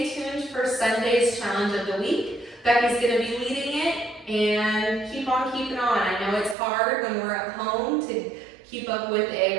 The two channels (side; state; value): left; drops out; at 6.6 s